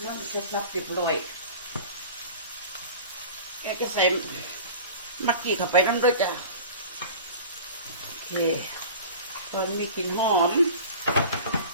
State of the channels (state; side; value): inverted; both; correlation -0.38